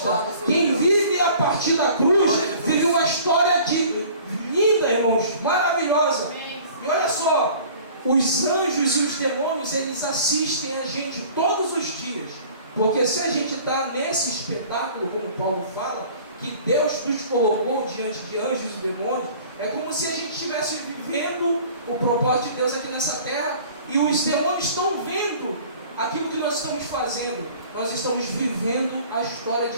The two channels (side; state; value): both; inverted; correlation -0.48